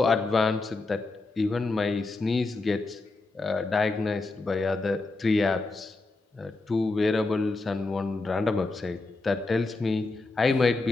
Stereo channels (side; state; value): right; quieter; 3.4 dB